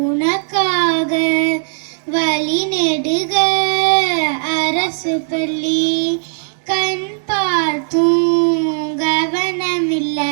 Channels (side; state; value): left; silent; 62 dB below the other